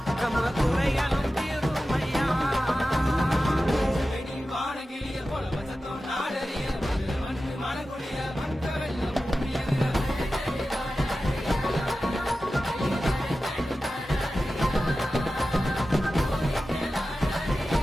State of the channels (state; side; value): normal; both; correlation 0.94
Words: நம்ம குறைகளும் தீருமையா வானகிளிய போல வசத்தம் நாடறிய மனக்குடிய மற்ற வெள்ளம்